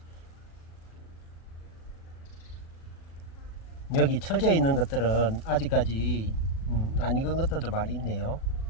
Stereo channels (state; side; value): late; right; 37 ms